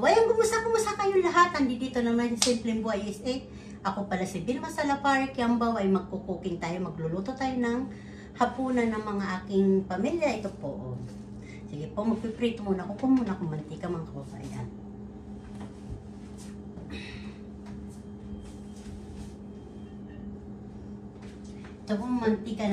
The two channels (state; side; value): identical; both; correlation 1.00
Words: kumusta kayo lahat? Andito naman sa Simpleng Buhay USA. Ako pala si Vilma Salapari Kiambaw ay magkukuking tayo, magluluto tayo ng hapunan ng mga aking pamilya. Ito po. Sige po, magpiprito muna ako. Muna akong mantika mga kababayan. Ito po mantika